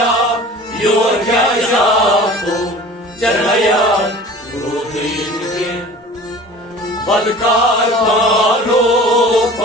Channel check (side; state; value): both; normal; correlation 0.42